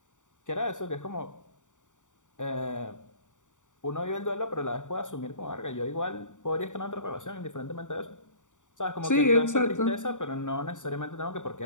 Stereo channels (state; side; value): late; right; 0.86 ms